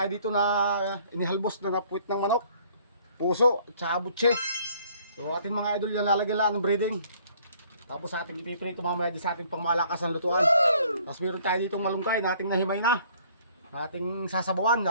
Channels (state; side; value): inverted; both; correlation -0.59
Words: dito na inihalbos na napuwit ng manok, puso at saka butse. So ating mga idol yan, lalagyan lang ng breading. Tapos ating ipiprito mamaya sa ating pangmalakasan lutuan. Tapos meron tayo ditong malunggay na ating nahimay na. Ating sasabawan,